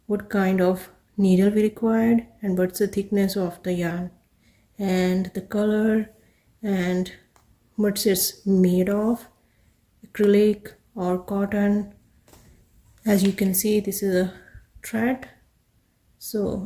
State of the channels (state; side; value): identical; both; correlation 1.00